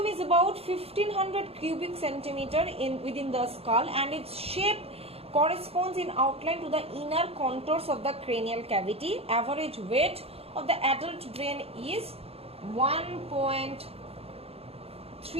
is about 1500 cubic centimeter within the skull, and its shape corresponds in outline to the inner contours of the cranial cavity. Average weight of the adult brain is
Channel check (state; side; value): late; left; 0.29 ms